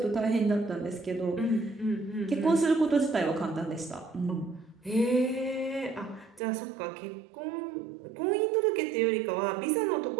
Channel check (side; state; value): left; drops out; at 6.4 s